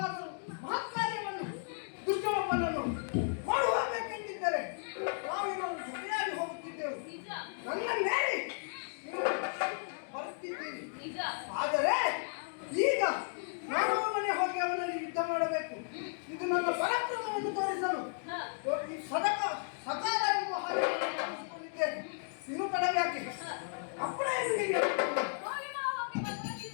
ಮಹತ್ಕಾರ್ಯವನ್ನು ದುಷ್ಟೊಬ್ಬನನ್ನು ಮಾಡುವಬೇಕೆಂದಿದ್ದರೆ ನಾವಿನ್ನು ಜೊತೆಯಾಗಿ ಹೋಗುತ್ತಿದ್ದೆವು. ನನ್ನ ಮೇಲೆ ಬರುತ್ತಿದ್ದೀರಿ. ಆದರೆ ಈಗ ನಾನು ಮನೆ ಹೋಗಿ ಅವನಲ್ಲಿ ಯುದ್ಧ ಮಾಡಬೇಕು. ಇದು ನನ್ನ ಪರಾಕ್ರಮವನ್ನು ತೋರಿಸಲು ಈ ಸಕಾಲ ಎಂಬ ಹಾಗೆ ಇನ್ನು ತಡವ್ಯಾಕೆ ಅಪ್ಪಣೆ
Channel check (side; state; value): right; silent; digital silence